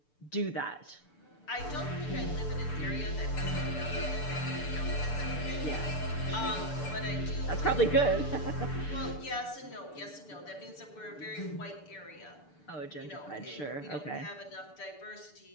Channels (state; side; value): late; right; 6.8 ms